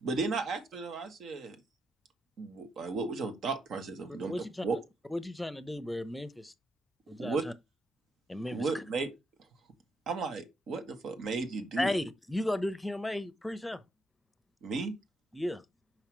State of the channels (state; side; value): normal; both; correlation 0.78